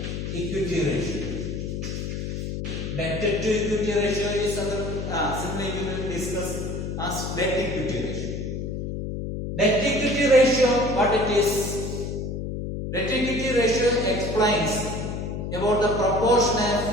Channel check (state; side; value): noise; left; hum, 4 dB below the sound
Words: equity ratio. Debt to equity ratio is simply we will discuss as debt equity ratio. Debt equity ratio, what it is? Debt equity ratio explains about the proportion